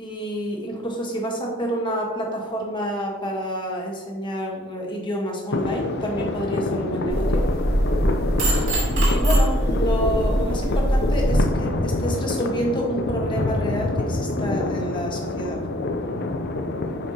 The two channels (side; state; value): both; normal; correlation 0.63